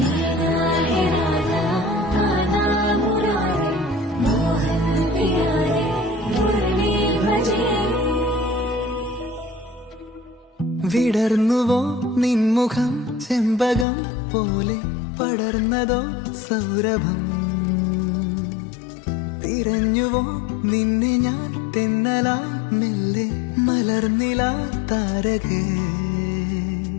है राधा कान्हा मुरारी मोहन प्यारे मुरली भजे വിടർന്നുവോ നിൻമുഖം ചെമ്പകം പോലെ പടർന്നതോ സൗരഭം തിരഞ്ഞുവോ നിന്നെ ഞാൻ തെന്നലായി മെല്ലെ മലർന്നില താരകേ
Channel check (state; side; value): drops out; right; at 13.9 s